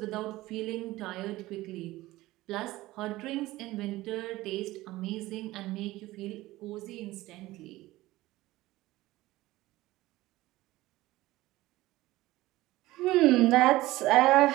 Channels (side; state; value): left; quieter; 17.8 dB